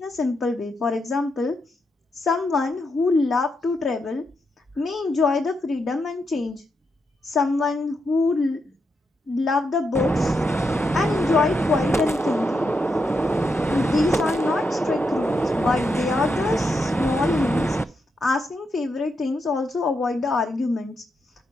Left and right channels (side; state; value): both; normal; correlation 0.83